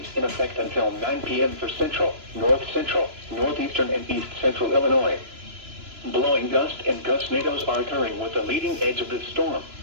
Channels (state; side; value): late; left; 2.9 ms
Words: in effect until 9 p.m. for central, north central, northeastern, and east central Illinois. Blowing gust and gustnadoes are occurring with the leading edge of this storm.